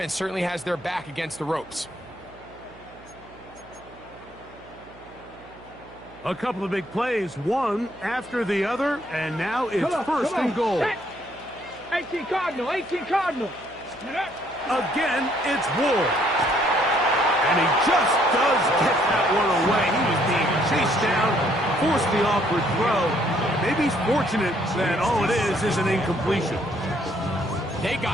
certainly has their back against the ropes. A couple of big plays, one after the other, and now it's first and goal. 18 Cardinal, 18 Cardinal. Again, it's Ward. And he just does get that one away. He was being chased down, forced the awkward throw. Maybe he's fortunate that all it is an incompletion. They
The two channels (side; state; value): right; noise; hum, 22 dB below the sound